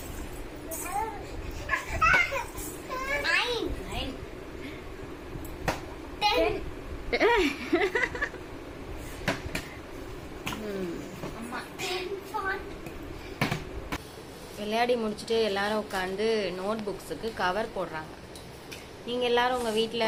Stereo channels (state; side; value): identical; both; correlation 1.00